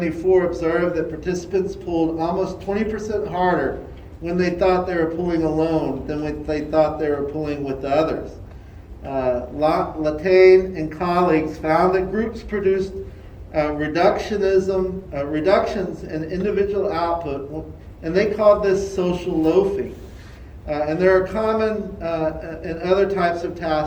observed that participants pulled almost 20% harder when they thought they were pulling alone than when they thought they were pulling with others. Latane and colleagues found that groups produced reductions in individual output, and they called this social loafing. And there are common in other types of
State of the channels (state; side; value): identical; both; correlation 1.00